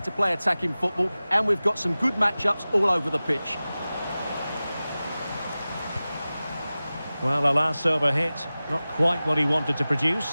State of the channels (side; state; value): both; inverted; correlation -0.97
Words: to play attacking football, and we've got some good matchups all over the pitch. Well, a last over hit, not quite what he wanted to